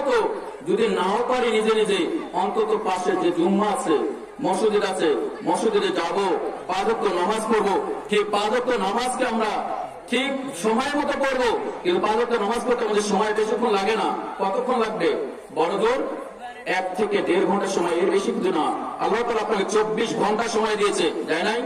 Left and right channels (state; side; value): identical; both; correlation 1.00